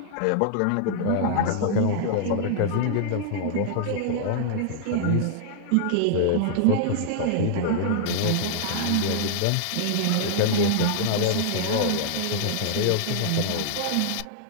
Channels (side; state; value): both; different; correlation -0.01